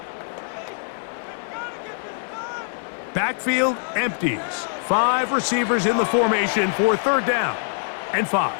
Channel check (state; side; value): silent; right; 59 dB below the other